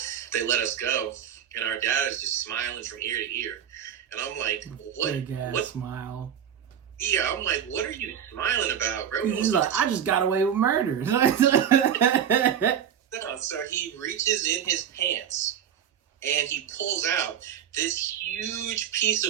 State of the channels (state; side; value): quieter; left; 9.0 dB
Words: they let us go. And our dad is just smiling from ear to ear. And I'm like, what? Big ass what? smile. Yeah, I'm like, what are you smiling about, bro? He's like, I just got away with murder. No, so he reaches in his pants and he pulls out this huge piece